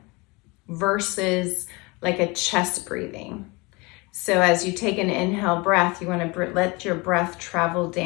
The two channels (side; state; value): right; quieter; 26.0 dB